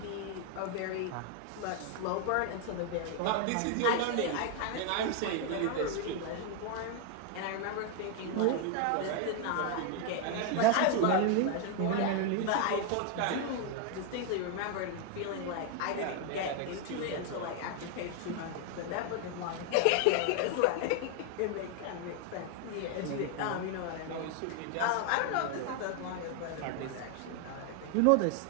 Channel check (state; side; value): different; both; correlation 0.01